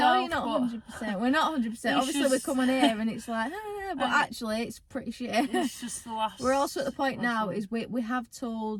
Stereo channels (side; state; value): both; identical; correlation 1.00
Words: you're myself, not but 100%. We're not 100%. it's Obviously, we just- come on here and it's like, but And actually, it's pretty shit. It's just the last. We're also at the point last now one. is we have